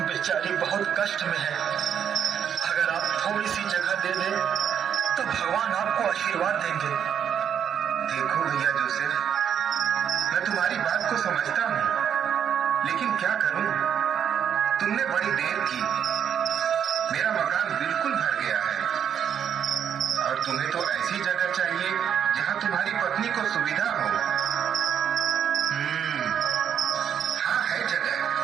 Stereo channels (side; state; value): left; quieter; 8.5 dB